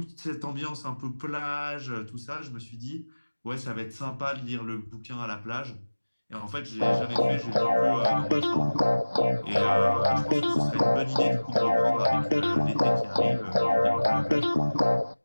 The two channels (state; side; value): inverted; both; correlation -1.00